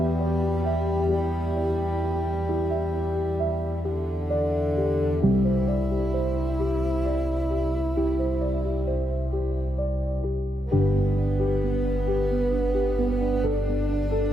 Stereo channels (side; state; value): both; normal; correlation 0.83